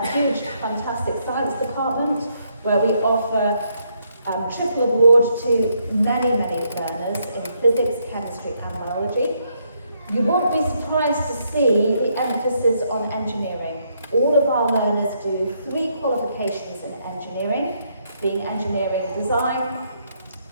huge, fantastic science department where we offer triple award to many learners in physics, chemistry and biology. You won't be surprised to see the emphasis on engineering. All of our learners do 3 qualifications in engineering, being engineering design,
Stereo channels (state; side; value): inverted; both; correlation -0.74